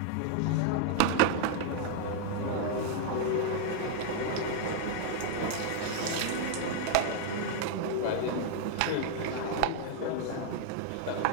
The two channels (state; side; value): different; both; correlation 0.00